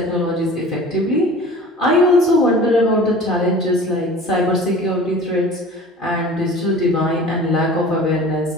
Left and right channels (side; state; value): both; normal; correlation 0.42